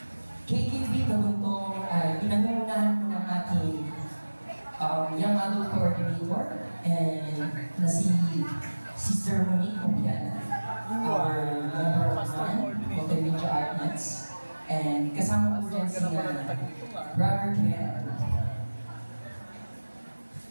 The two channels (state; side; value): inverted; both; correlation -1.00